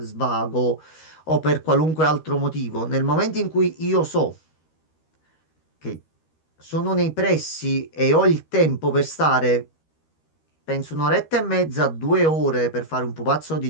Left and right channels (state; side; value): late; right; 13 ms